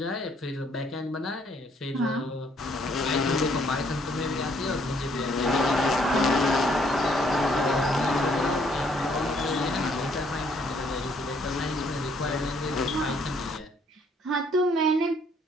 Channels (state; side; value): normal; both; correlation 0.66